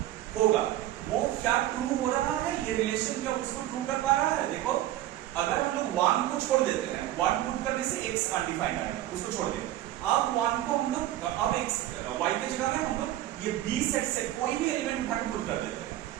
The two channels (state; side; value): quieter; left; 13.9 dB